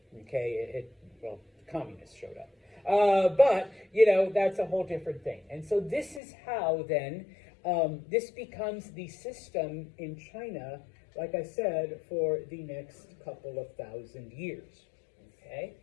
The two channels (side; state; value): right; drops out; at 6.2 s